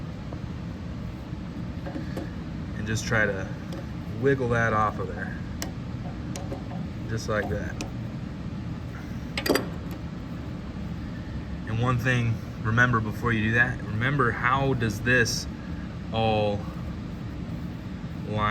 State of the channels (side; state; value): both; identical; correlation 1.00